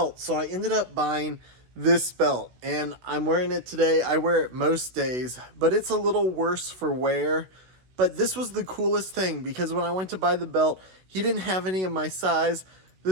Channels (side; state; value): left; late; 16 ms